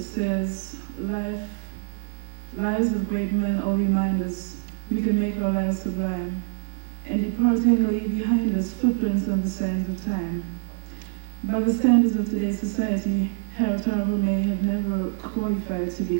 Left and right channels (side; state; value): left; silent; 61 dB below the other